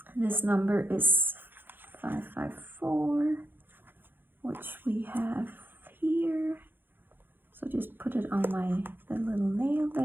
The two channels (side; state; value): left; late; 0.098 ms